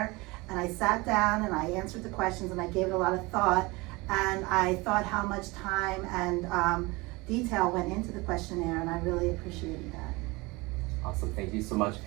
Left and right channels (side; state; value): left; quieter; 23.8 dB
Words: and I sat down and I answered the questions, and I gave it a lot of thought, and I thought how much time and detail went into the questionnaire, and I really appreciated that. Awesome. Thank you so much.